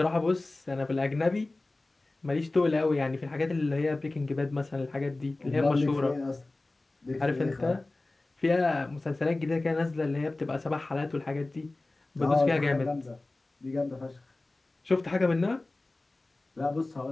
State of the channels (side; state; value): right; quieter; 3.0 dB